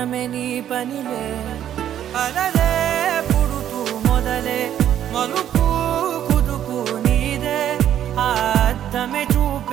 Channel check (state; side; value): quieter; left; 10.7 dB